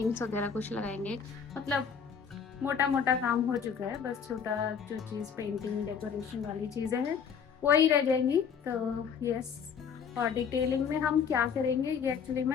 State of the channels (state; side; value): quieter; right; 6.9 dB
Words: वगैरह कुछ लगाएंगे, मतलब मोटा मोटा काम हो चुका है। बस छोटा जो चीज पेंटिंग डेकोरेशन वाली चीजें हैं वही रह जाएंगी। तो यस, और डिटेलिंग में हम क्या करेंगे ये एक्चुअली